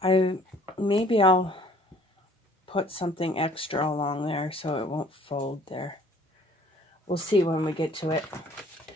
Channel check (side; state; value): both; normal; correlation 0.56